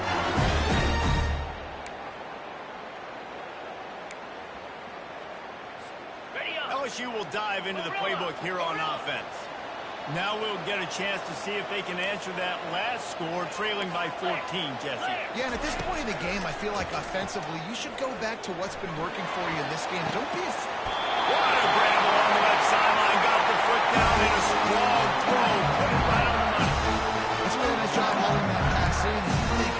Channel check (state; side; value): identical; both; correlation 1.00